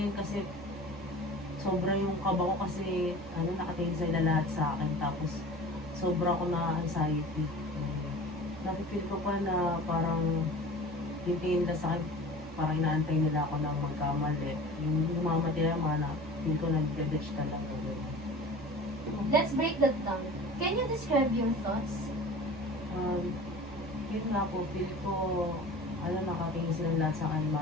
yun kasi sobra yung kaba ko kasi nakatingin sila lahat sa akin, tapos sobra ko na anxiety. Nakifeel ko pa na parang tingin nila sa akin, parang inaantay nila ako ng magkamali. Yung humamati na mga feel ko nag-detach ka lang. Let's break that down. Can you describe your thoughts? Yun nga po, feel ko, nakatingin silang lahat sa akin,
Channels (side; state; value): both; normal; correlation 0.40